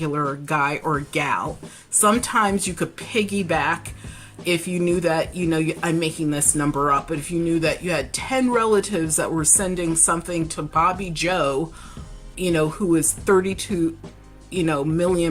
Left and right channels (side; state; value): both; identical; correlation 1.00